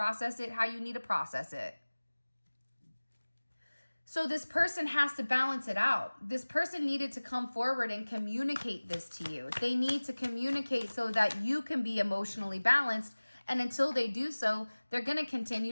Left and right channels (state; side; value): inverted; both; correlation -1.00